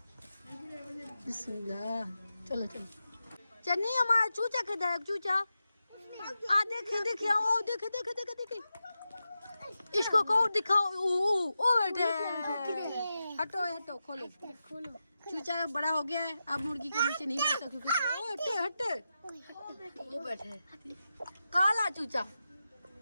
बिस्मिल्लाह, चलो चलो। चन्नी हमारा चूचा किधर है? चूचा आ देखे देखे, ओ देखे देखे देखे देखे, इसको को दिखाओ। ओ बैठे, हटो हटो, खोलो खोलो। चूचा बड़ा हो गया है, अब मुर्गी के नीचे नहीं बैठता क्योंकि ओ हटे हटे, वो बैठे काला चूचा।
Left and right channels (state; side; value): inverted; both; correlation -0.90